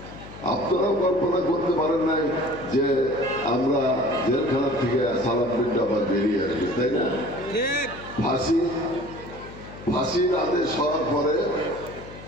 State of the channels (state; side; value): noise; left; hum, 16 dB below the sound